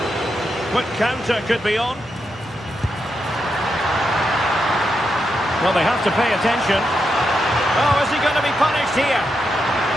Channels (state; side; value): normal; both; correlation 0.84